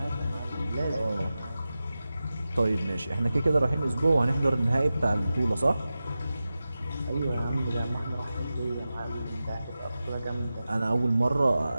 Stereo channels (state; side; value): inverted; both; correlation -0.94